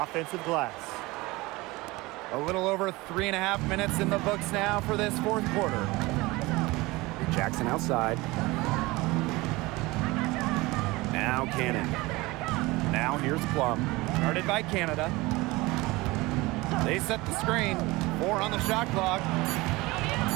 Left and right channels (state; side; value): quieter; left; 21.6 dB